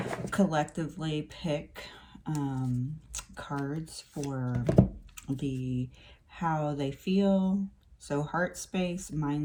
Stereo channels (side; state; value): both; identical; correlation 1.00